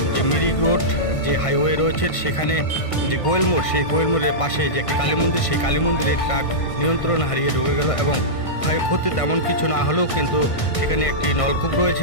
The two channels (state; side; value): late; right; 1.5 ms